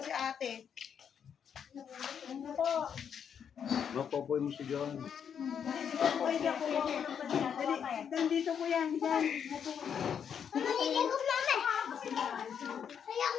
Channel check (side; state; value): right; quieter; 7.8 dB